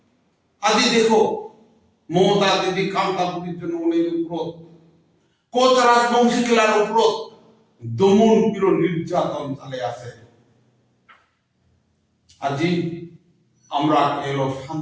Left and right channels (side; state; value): both; identical; correlation 1.00